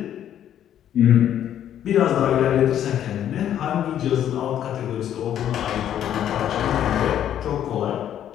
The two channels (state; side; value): quieter; right; 10.6 dB